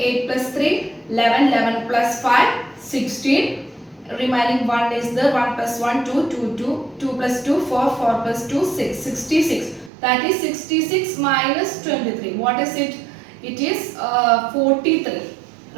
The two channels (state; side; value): drops out; left; at 9.9 s